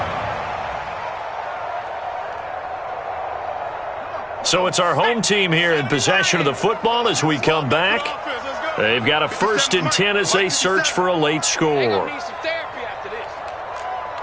So it's our home team here in possession of the football as we come back. They've got a 1st and 10 as they search for a late score.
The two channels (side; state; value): both; identical; correlation 1.00